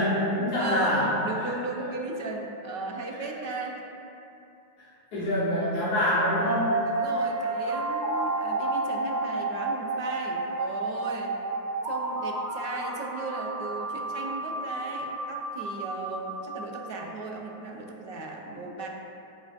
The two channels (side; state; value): right; late; 9.4 ms